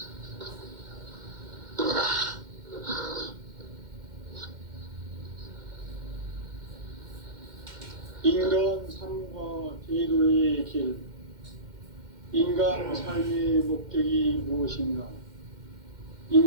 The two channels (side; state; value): left; late; 2.1 ms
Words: 인간 삶과 제도의 길. 인간 삶의 목적이 무엇인가?